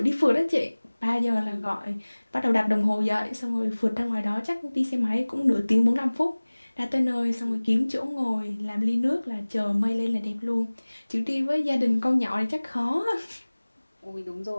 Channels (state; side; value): inverted; both; correlation -1.00